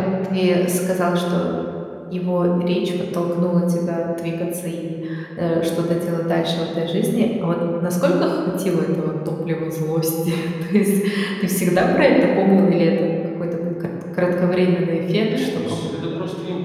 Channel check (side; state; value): both; identical; correlation 1.00